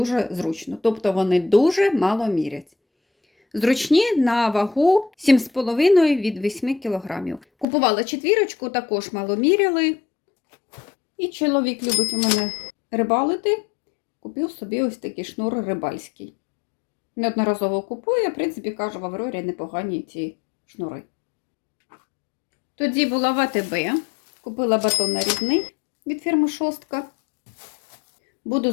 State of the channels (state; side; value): drops out; right; at 7.7 s